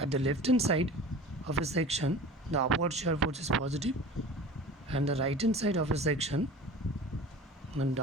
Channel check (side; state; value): both; normal; correlation 0.39